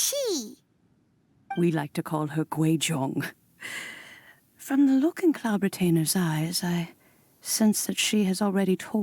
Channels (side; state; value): both; identical; correlation 1.00